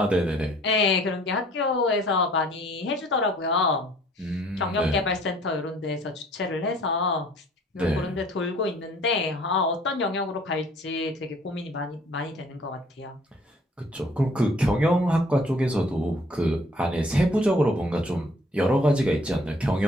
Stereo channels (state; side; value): normal; both; correlation 0.57